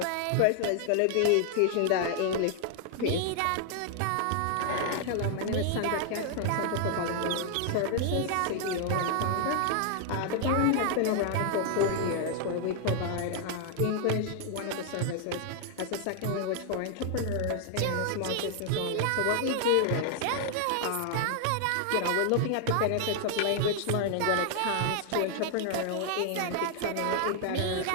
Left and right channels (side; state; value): both; different; correlation 0.00